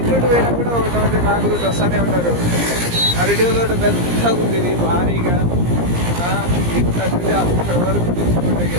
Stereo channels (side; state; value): left; late; 17 ms